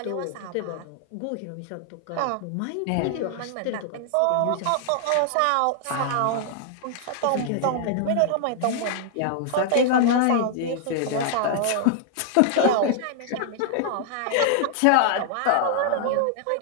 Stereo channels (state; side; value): different; both; correlation -0.01